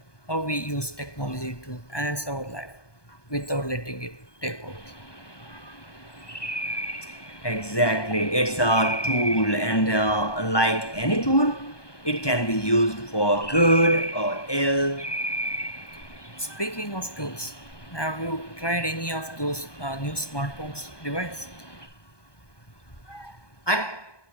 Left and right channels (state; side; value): late; right; 1.2 ms